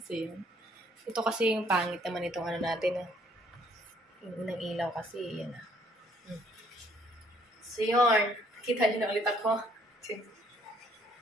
yan. Ito kasi yung pangit naman itong ano natin. Yung unang ilaw kasi. Yan So, yun. Kita niyo na ulit ako.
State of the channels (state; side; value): normal; both; correlation 0.65